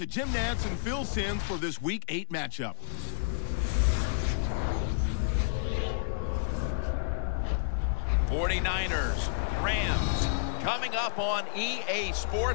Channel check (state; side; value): silent; right; digital silence